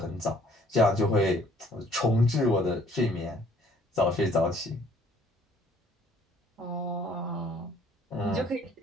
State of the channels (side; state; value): both; normal; correlation 0.59